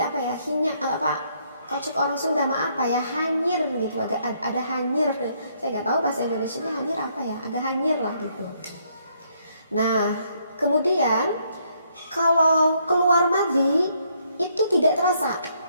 ya? Kalau cek orang Sunda mah apa ya, hanyir gitu, agak ada hanyir. Saya nggak tahu bahasa Indonesianya hanyir apa ya, agak hanyir lah gitu. Nah kemudian kalau keluar madhi itu tidak terasa,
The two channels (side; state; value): both; inverted; correlation -0.71